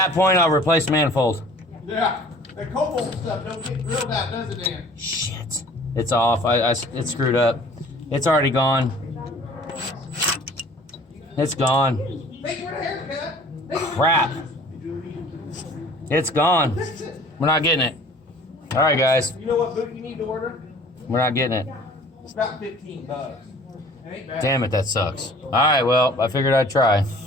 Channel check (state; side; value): normal; both; correlation 0.50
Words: point, I'll replace manifold. Yeah. That cobalt stuff don't get drilled out, does it, Dan? Shit. It's off. It's screwed up. It's already gone. It's gone. Thank you for the haircut. Crap. It's gone. We're not getting it. All right, guys. You know what boot you need to order? We're not getting it. It's about $15. It ain't bad. Damn it, that sucks. All right, well, I figured I'd try.